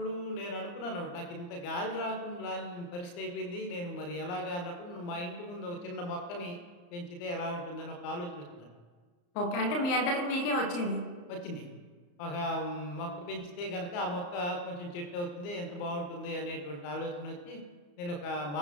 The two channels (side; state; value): right; late; 34 ms